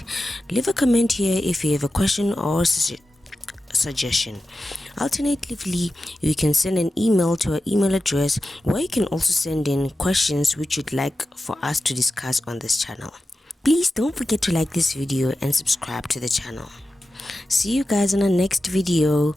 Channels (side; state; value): both; normal; correlation 0.92